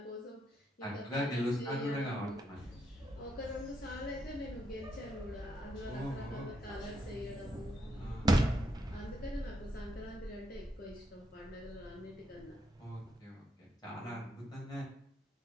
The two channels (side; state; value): both; normal; correlation 0.78